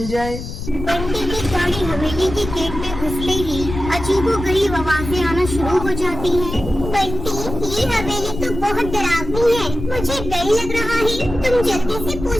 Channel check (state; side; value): noise; left; rumble, 8 dB below the sound